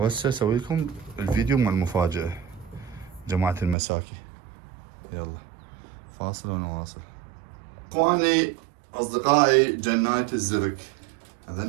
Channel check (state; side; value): drops out; left; at 3.8 s